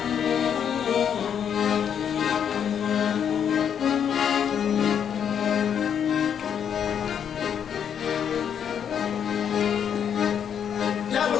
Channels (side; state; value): right; quieter; 8.3 dB